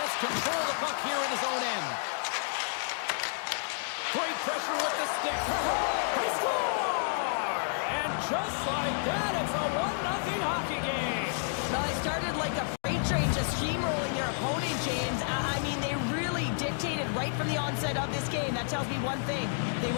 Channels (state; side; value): silent; right; digital silence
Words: control of the puck here in his own end. Great pressure with the stick. They score! And just like that, it's a 1-0 hockey game. Now, they started like a freight train just steamrolling their opponent, James. I mean, they really dictated right from the onset of this game. That tells me one thing. They